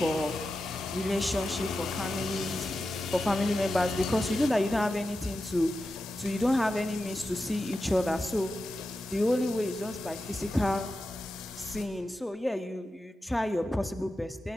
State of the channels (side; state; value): both; normal; correlation 0.91